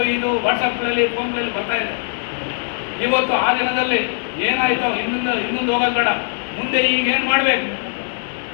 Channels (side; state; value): right; silent; 65 dB below the other